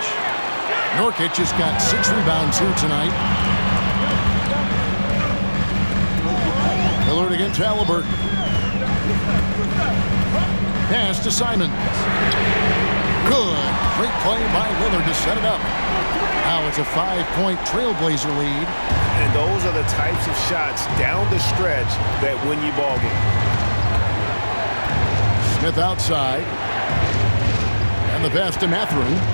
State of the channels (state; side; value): inverted; both; correlation -1.00